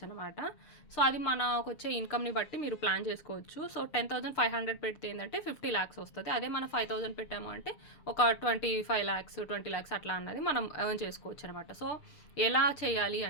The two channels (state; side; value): late; right; 6.7 ms